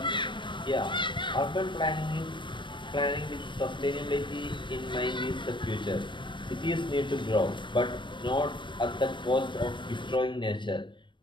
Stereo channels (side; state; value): right; late; 0.23 ms